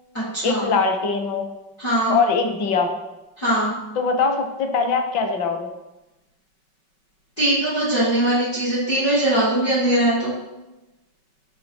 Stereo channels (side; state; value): right; late; 5.3 ms